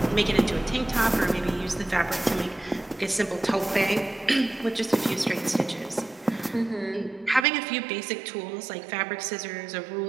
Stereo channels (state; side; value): drops out; left; at 7.5 s